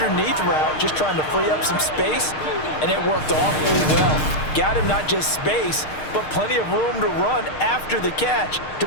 route, just trying to free up some space, and it worked awfully well. Got him not just space, but plenty of room to run after the catch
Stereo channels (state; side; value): late; right; 6.5 ms